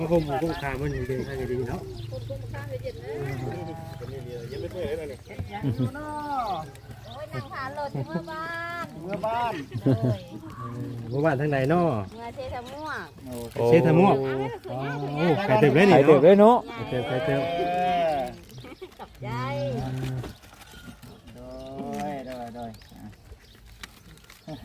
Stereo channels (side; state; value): both; identical; correlation 1.00